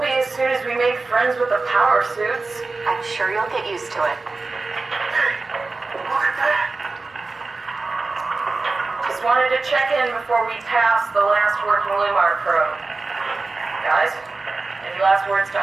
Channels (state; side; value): quieter; left; 3.7 dB